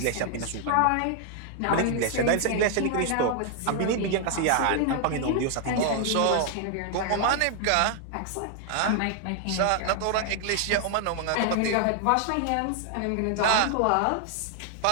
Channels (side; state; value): both; different; correlation 0.00